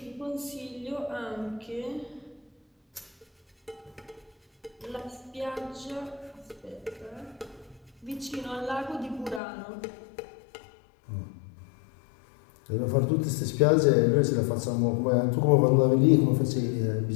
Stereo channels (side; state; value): right; drops out; at 9.4 s